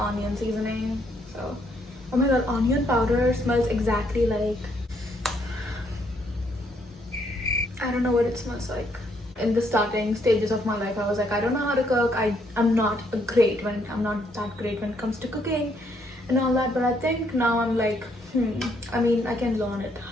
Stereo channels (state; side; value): normal; both; correlation 0.71